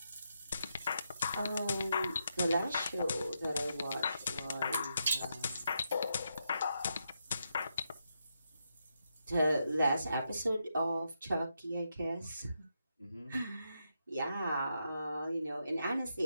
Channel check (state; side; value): inverted; both; correlation -0.83